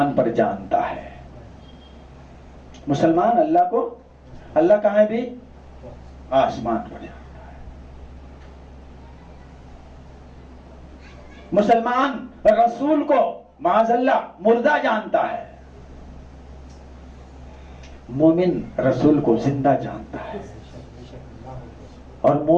पर जानता है, मुसलमान अल्लाह को, अल्लाह कहाँ है भी, आसमान पर जानता है। मुसलमान रसूल को माज़अल्लाह मुर्दा जानता है, मोमिन रसूल को जिंदा जानता है। और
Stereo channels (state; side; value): identical; both; correlation 1.00